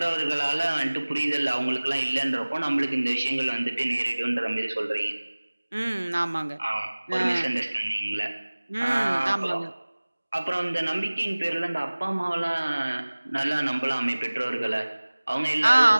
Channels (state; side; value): inverted; both; correlation -1.00